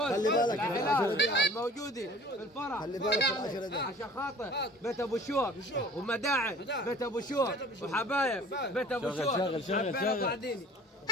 العائلات الموجودين في الفرح. خلي بالك في العشرة دي عشان خاطر بيت ابو شوق ومداعم بيت ابو شوق وحبايب بيت ابو شوق. شغل بعدين.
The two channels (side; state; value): both; normal; correlation 0.48